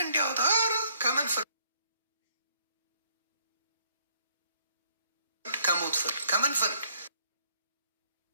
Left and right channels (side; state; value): both; inverted; correlation -0.65